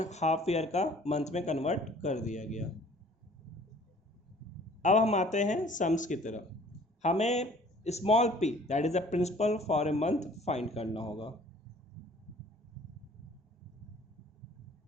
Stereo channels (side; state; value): both; normal; correlation 0.53